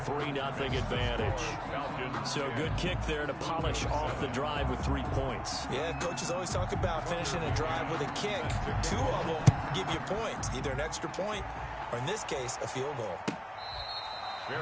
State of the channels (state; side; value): identical; both; correlation 1.00